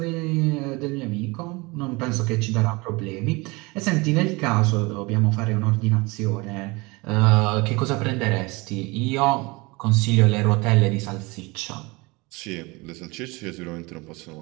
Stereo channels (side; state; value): left; quieter; 25.1 dB